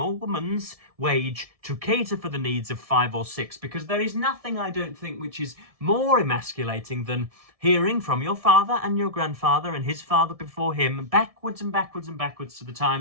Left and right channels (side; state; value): left; late; 1.7 ms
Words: woman's wage to cater for the needs of 5 or 6, because there is nothing, I don't think, which is more emasculating than hearing from your father and your grandfather and his father before him, backwards and backwards and backwards to the